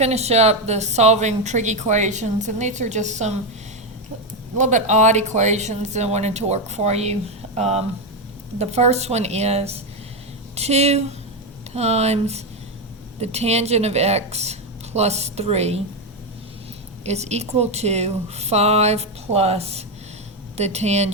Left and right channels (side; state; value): both; normal; correlation 0.08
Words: up the solving trig equations, and these are just some a little bit odd equations that I wanted to work for you. The first one is 2 times the tangent of x plus 3 is equal to 5 plus the